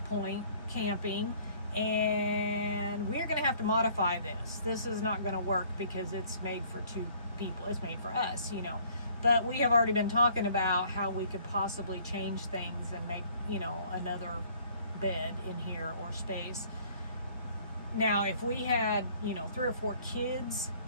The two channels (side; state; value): both; inverted; correlation -0.57